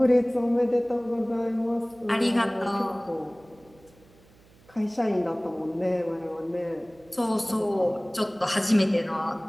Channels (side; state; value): right; noise; hum, 28 dB below the sound